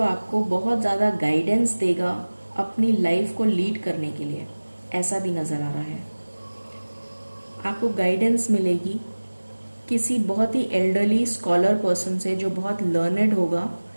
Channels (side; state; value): both; inverted; correlation -1.00